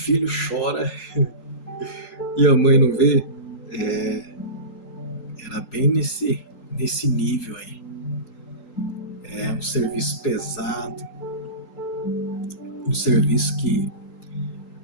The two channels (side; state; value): right; late; 3.8 ms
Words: chora e a mãe não vê? Era bem nesse nível aí. É um serviço pesado, um serviço que